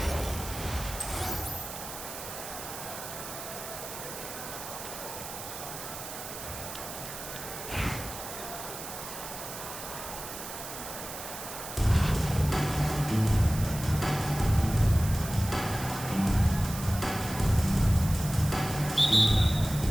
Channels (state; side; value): noise; right; hiss, 9 dB below the sound